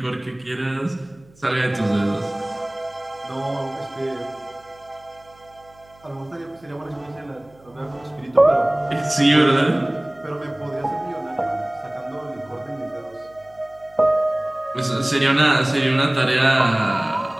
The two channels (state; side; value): noise; right; hum, 28 dB below the sound